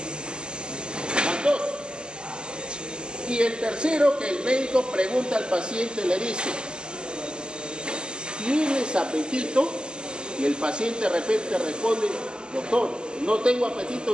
Van dos. Y el tercero, que el médico pregunta al paciente, le dice, ¿tienes apetito? Y el paciente de repente responde, doctor, no tengo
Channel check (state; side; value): late; left; 0.047 ms